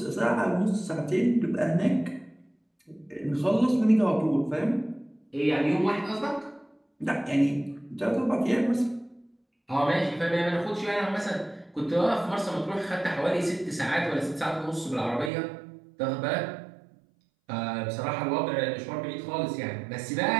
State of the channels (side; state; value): left; drops out; at 15.3 s